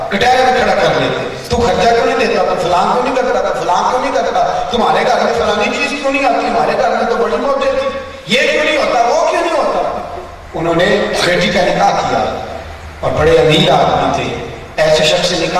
کٹہرے میں کھڑا کر لیتے، تو خرچہ کیوں نہیں دیتا، تو فلان کیوں نہیں کرتا، تو فلان کیوں نہیں کرتا، تمہارے گھر میں فلانی چیز کیوں نہیں آتی، ہمارے گھر میں تو بڑی موجود تھی، یہ کیوں نہیں ہوتا، وہ کیوں نہیں ہوتا۔ انہوں نے بیٹی کا نکاح کیا اور بڑے امیر آدمی تھے، ایسے شخص سے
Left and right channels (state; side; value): identical; both; correlation 1.00